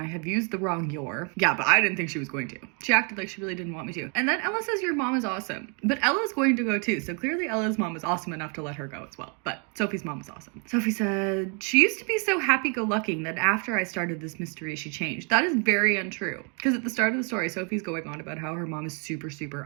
have used the wrong your. Yeah, but I didn't think she was going to. She acted like she really didn't want me to. And then Ella says your mom is awesome. But Ella's going to go too. So clearly Ella's mom is awesome enough to let her go as well. But Sophie's mom is awesome. Sophie said, she used to be so happy-go-lucky that after I started this mystery, she changed. That is very untrue. Because at the start of the story, Sophie's going on about how her mom is super, super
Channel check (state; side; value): quieter; left; 36.8 dB